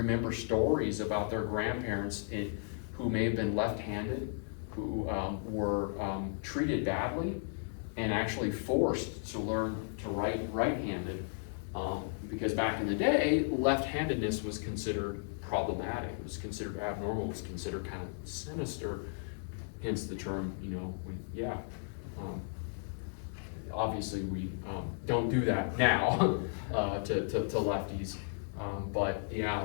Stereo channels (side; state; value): right; silent; digital silence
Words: stories about their grandparents who may have been left-handed, who were treated badly and actually forced to learn to write right-handed. Because back in the day, left-handedness was considered problematic, it was considered abnormal, it was considered kind of sinister, hence the term, obviously we don't do that now to lefties, but yeah,